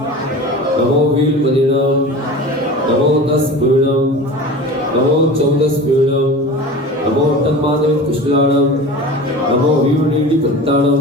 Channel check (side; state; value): both; normal; correlation 0.35